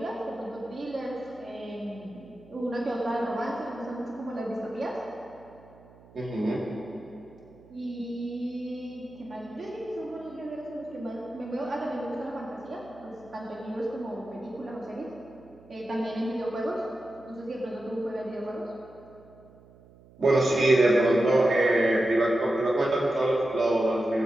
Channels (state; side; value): noise; right; hum, 24 dB below the sound